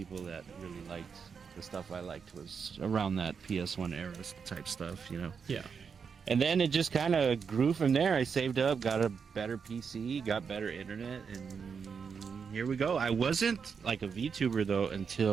that really liked the stuff I liked was around that PS1 era type stuff, you know? Yeah. And then it just kind of grew from there. I saved up, got a better PC, got better internet, and here we go. I wasn't like a VTuber though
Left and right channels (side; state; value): left; quieter; 6.1 dB